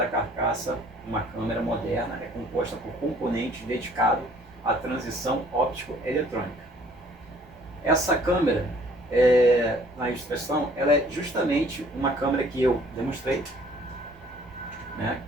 carcaça. Uma câmera moderna é composta por componentes dedicados à transição óptico-eletrônica. Essa câmera, na ilustração, ela é justamente uma câmera que eu demonstrei, né,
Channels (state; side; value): noise; right; rumble, 26 dB below the sound